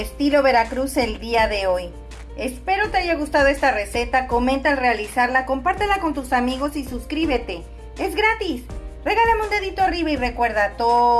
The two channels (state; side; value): identical; both; correlation 1.00